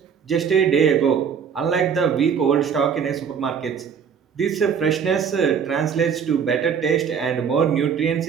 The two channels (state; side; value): quieter; left; 7.0 dB